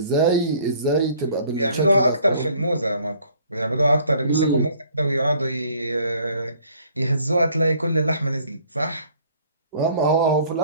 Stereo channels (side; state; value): both; inverted; correlation -0.57